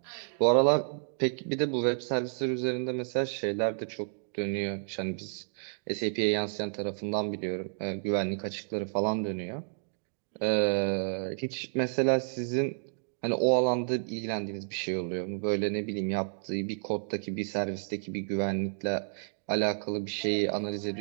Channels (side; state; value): left; silent; digital silence